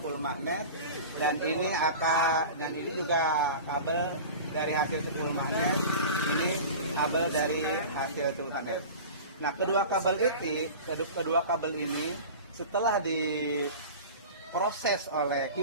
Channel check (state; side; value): inverted; both; correlation -0.34